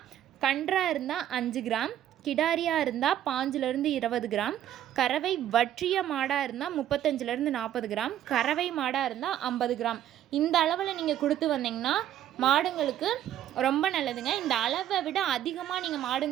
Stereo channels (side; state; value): left; quieter; 11.5 dB